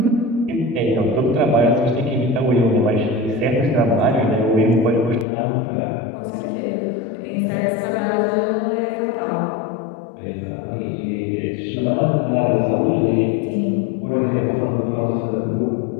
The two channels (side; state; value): right; drops out; at 5.2 s